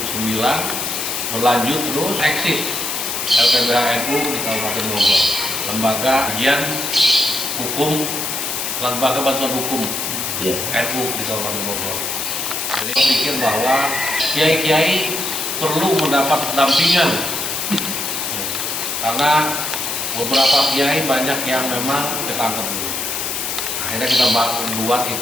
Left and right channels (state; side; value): noise; left; hiss, 2 dB below the sound